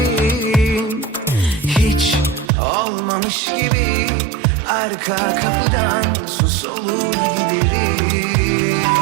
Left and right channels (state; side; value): drops out; left; at 2.5 s